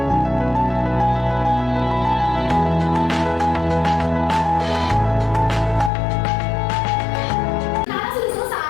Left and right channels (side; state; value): right; drops out; at 5.9 s